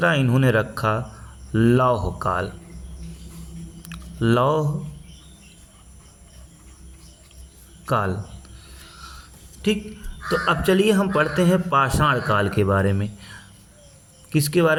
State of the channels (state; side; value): identical; both; correlation 1.00